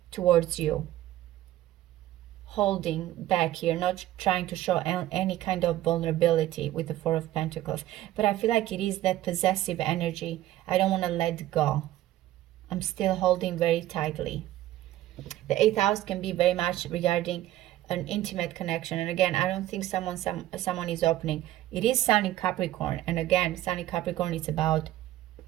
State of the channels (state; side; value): quieter; left; 14.5 dB